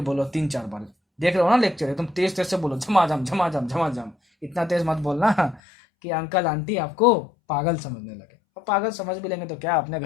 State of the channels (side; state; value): right; drops out; at 5.6 s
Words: 3-4 बार, देख रहे हो ना लेक्चर, एकदम तेज तेज से बोलो, झमाझम झमाझम झमाझम। इतना तेज मत बोलना कि अंकल आंटी आपको पागल समझने लगे। और पागल समझ भी लेंगे तो क्या, अपने